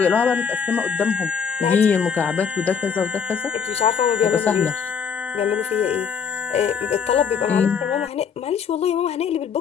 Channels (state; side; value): quieter; right; 6.8 dB